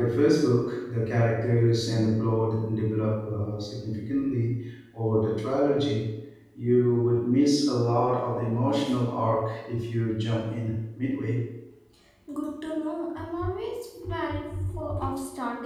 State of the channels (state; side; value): identical; both; correlation 1.00